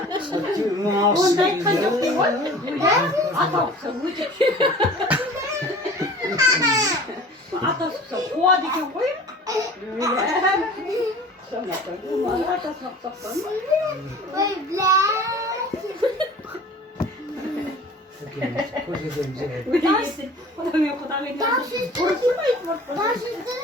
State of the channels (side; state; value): both; normal; correlation 0.43